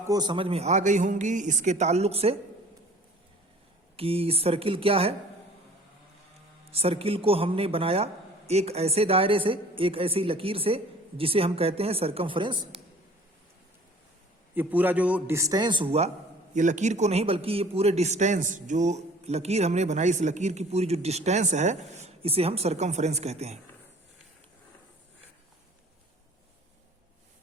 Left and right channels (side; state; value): both; normal; correlation 0.49